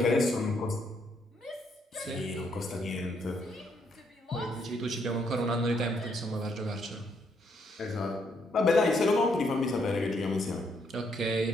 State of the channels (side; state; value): both; normal; correlation 0.73